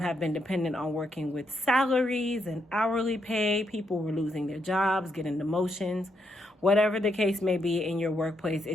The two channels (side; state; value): both; normal; correlation 0.78